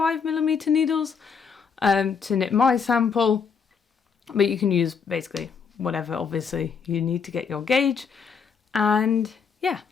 millimeter needles to knit my sample, but you can use basically whatever obviously you need to get your gauge. And yeah,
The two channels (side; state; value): right; quieter; 6.1 dB